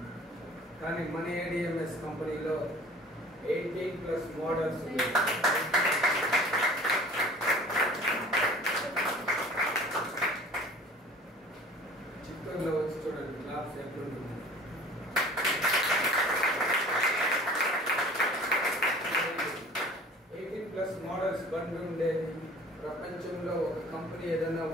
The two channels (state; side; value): normal; both; correlation 0.46